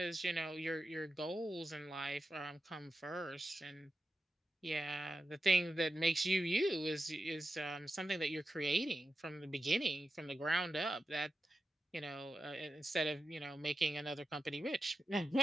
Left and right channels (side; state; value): both; normal; correlation 0.91